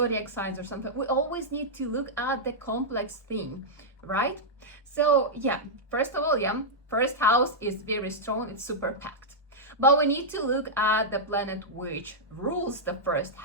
signs or something. We always need to look at the complex thing, right? So first of all, first house is very strong, it's super packed. But we need to look at the planet which rules the first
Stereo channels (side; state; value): both; normal; correlation -0.08